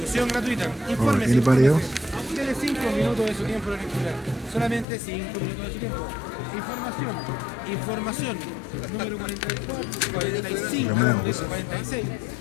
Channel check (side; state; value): right; drops out; at 4.9 s